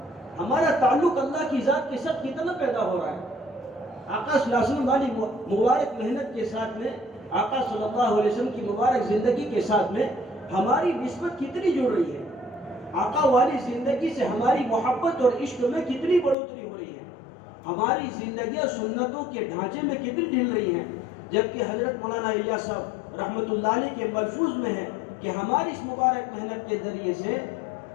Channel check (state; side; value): drops out; right; at 16.4 s